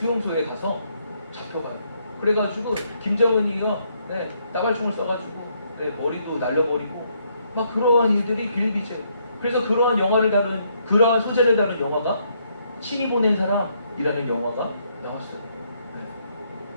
가서 잡혀가요. 그래가지고 김정은이요 따발총을 쏴가지고 머리도 날려버리고 막 그러한 일들이 빌비죠. 그래서 그러한 영화를 다룬 그러한 소재를 다룬 영화가 신이 보낸 사람이라는 영화가 나왔어요.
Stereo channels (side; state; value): both; inverted; correlation -0.73